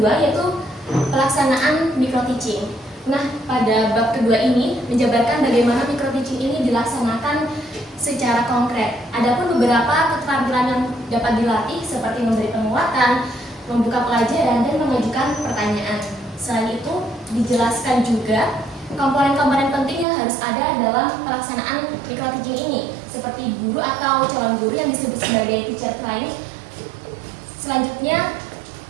yaitu pelaksanaan micro-teaching. Nah, pada bab kedua ini menjabarkan bagaimana micro-teaching ini dilaksanakan secara konkret. Adapun beberapa keterampilan yang dapat dilatih seperti memberi penguatan, membuka pelajaran, dan mengajukan pertanyaan. Selain itu, dijelaskan juga komponen-komponen penting yang harus ada dalam pelaksanaan micro-teaching ini, seperti guru atau calon guru yang disebut sebagai teacher training. Selanjutnya,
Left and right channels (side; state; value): left; drops out; at 20.1 s